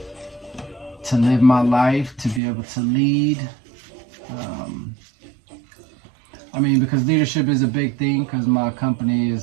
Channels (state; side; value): drops out; left; at 2.4 s